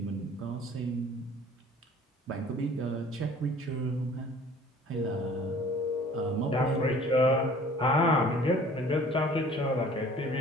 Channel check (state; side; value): normal; both; correlation 0.50